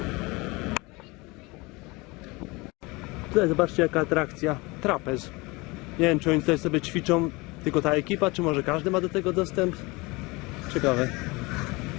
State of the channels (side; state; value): right; quieter; 24.6 dB